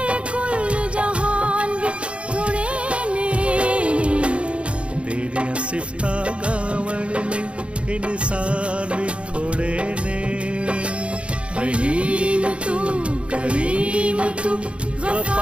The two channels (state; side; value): late; left; 0.060 ms